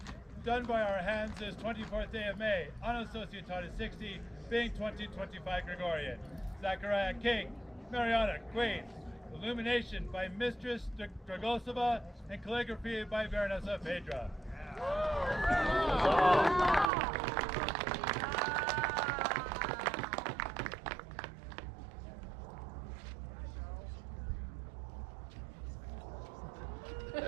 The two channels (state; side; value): drops out; left; at 16.9 s